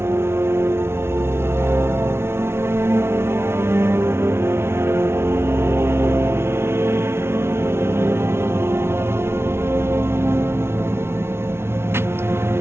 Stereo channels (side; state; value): left; late; 0.12 ms